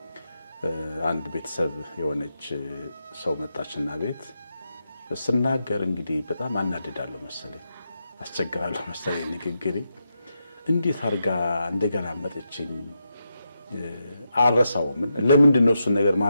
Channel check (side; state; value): both; inverted; correlation -0.85